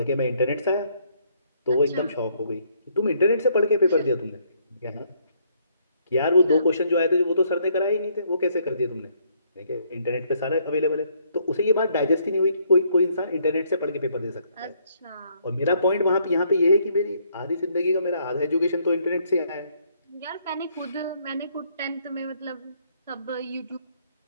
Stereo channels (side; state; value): both; inverted; correlation -0.69